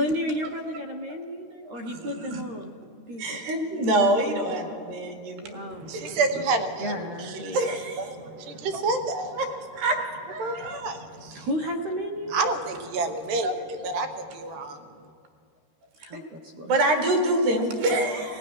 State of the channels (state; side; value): late; left; 13 ms